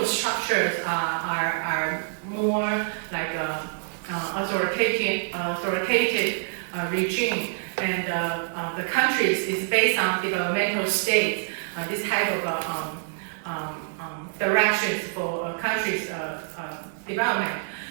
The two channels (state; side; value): silent; left; digital silence